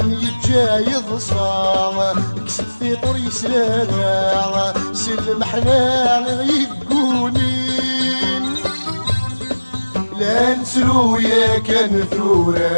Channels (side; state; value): both; inverted; correlation -1.00